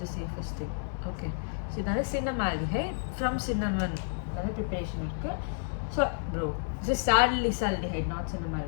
the safest thing. Okay. So இதால cinnamaldehyde from cinnamon அத preparation இருக்கு. So bro, this is salicylaldehyde, not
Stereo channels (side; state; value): right; silent; digital silence